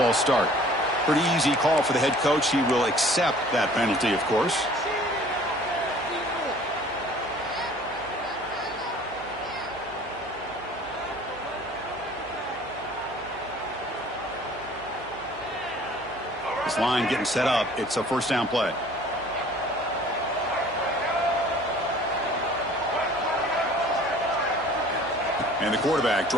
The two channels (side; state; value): right; noise; hum, 20 dB below the sound